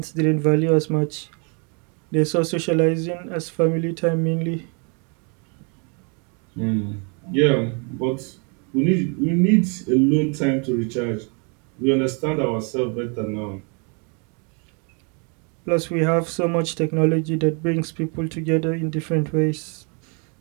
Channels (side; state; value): left; quieter; 35.8 dB